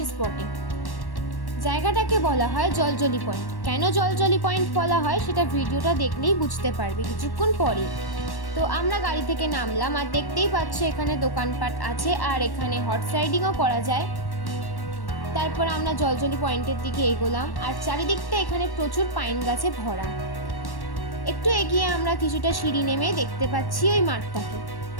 স্পটে। জায়গাটাকে বলা হয় জলজলি পয়েন্ট। কেন জলজলি পয়েন্ট বলা হয় সেটা ভিডিওটা দেখলেই বুঝতে পারবে কিছুক্ষণ পরে। তো আমরা গাড়ি থেকে নামলাম, আর দেখতেই পাচ্ছ এখানে দোকানপাট আছে, আর এখানে হর্স রাইডিংও করা যায়। তারপর আমরা জলজলি পয়েন্টের দিকে এগোলাম, আর চারিদিকটা এখানে প্রচুর পাইন গাছে ভরা। একটু এগিয়ে আমরা কিছুটা সিঁড়ি নেমে দেখতে পাচ্ছি ওই মাঠটাকে।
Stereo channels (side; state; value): right; late; 1.1 ms